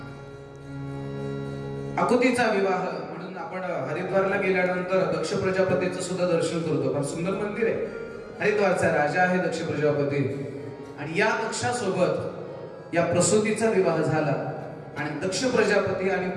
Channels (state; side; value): identical; both; correlation 1.00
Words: आकुतीचा विवाह म्हणून आपण हरिद्वारला गेल्यानंतर दक्ष प्रजापतीचं सुद्धा दर्शन करतो. फार सुंदर मंदिर आहे. हरिद्वारचा राजा आहे दक्ष प्रजापती आणि या दक्षासोबत या प्रसूतीचा विवाह झाला आणि दक्ष प्रजापती आणि